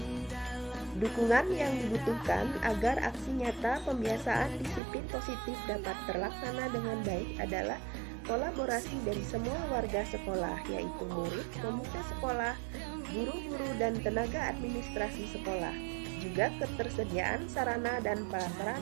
Dukungan yang dibutuhkan agar aksi nyata pembiasaan disiplin positif dapat terlaksana dengan baik adalah kolaborasi dari semua warga sekolah, yaitu murid, komite sekolah, guru-guru, dan tenaga administrasi sekolah. Juga ketersediaan sarana dan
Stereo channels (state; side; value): drops out; left; at 4.8 s